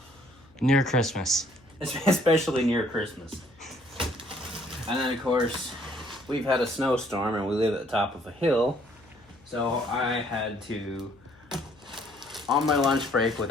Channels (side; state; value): left; noise; hum, 28 dB below the sound